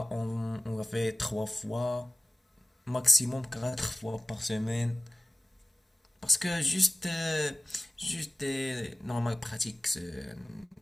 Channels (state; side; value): normal; both; correlation 0.97